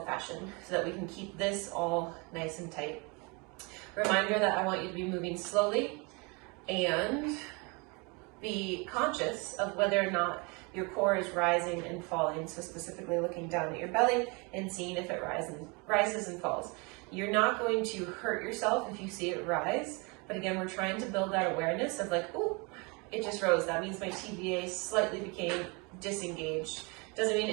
so that we can keep this all nice and tight. Reminder that I want you to be moving slowly and be conscious of whether or not your core is rising and falling. So specifically looking down at your belly and seeing if it rises and falls. You're not going to hurt yourself if you see it rise, but again, we're trying to build that awareness of like, oh, it just rose. That means my TVA slightly became disengaged. Doesn't mean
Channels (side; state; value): left; quieter; 29.7 dB